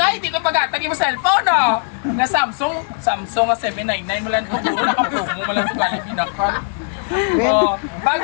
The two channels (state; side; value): silent; right; digital silence